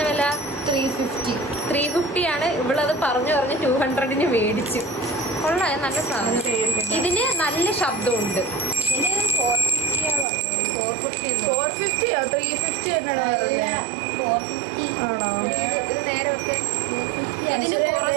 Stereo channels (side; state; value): left; drops out; at 10.2 s